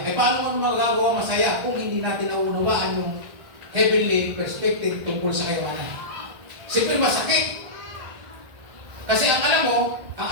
Eh paano mo magagawa masaya kung hindi natin naunawaan yung heavenly perspective tungkol sa kayamanan? Siyempre masakit. Kasi ang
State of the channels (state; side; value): late; left; 1.6 ms